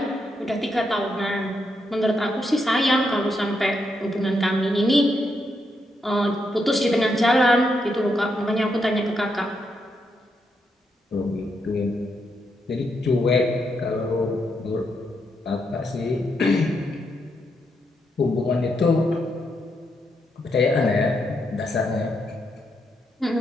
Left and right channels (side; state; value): both; normal; correlation 0.80